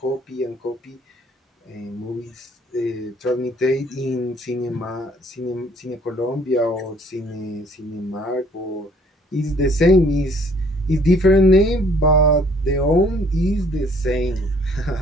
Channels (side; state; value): both; normal; correlation 0.59